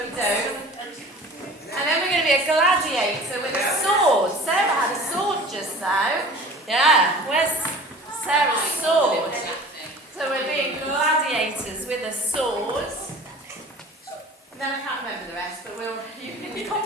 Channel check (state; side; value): normal; both; correlation 0.43